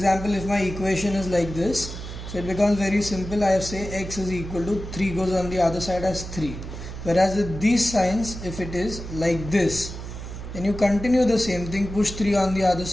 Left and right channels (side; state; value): right; noise; hum, 9 dB below the sound